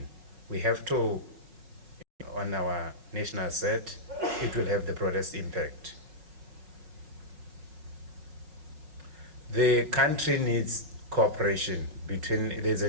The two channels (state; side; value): late; left; 5.3 ms